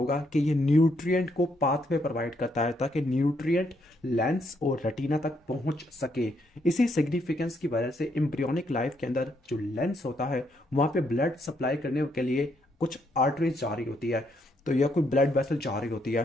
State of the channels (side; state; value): both; normal; correlation 0.74